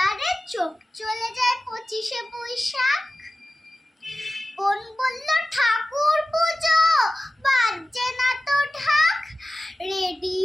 চোখ চলে যায় ২৫শে বৈশাখ। বোন বলল ঠাকুর পুজো, বাজছে না তো ঢাক,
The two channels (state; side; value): normal; both; correlation 0.95